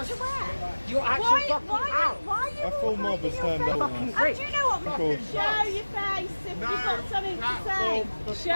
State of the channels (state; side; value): inverted; both; correlation -1.00